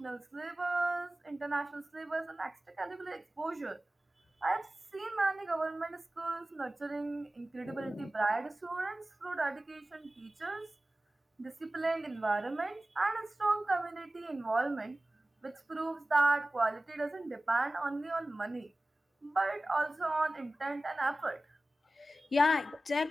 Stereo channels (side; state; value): both; normal; correlation 0.96